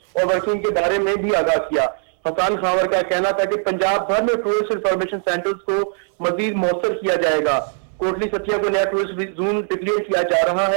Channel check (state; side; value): silent; left; 56 dB below the other